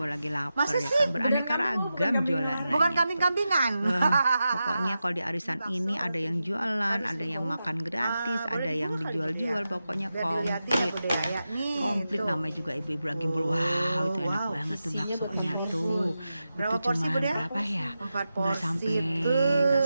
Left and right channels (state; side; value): inverted; both; correlation -0.91